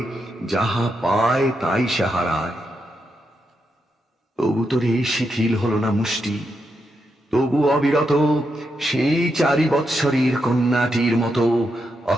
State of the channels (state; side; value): normal; both; correlation 0.83